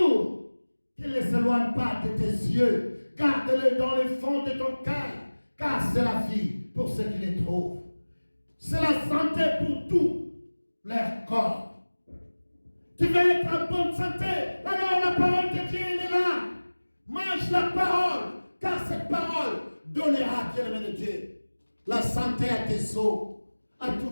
Qu'il ne s'éloigne pas de tes yeux. Garde-le dans les fonds de ton cœur. Car c'est la vie pour ceux qui les trouvent. C'est la santé pour tout leur corps. Tu veux être en bonne santé, alors la parole de Dieu est là. Mange la parole, car cette parole donnera, bien-aimé de Dieu, la santé à tes os, à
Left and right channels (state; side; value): inverted; both; correlation -1.00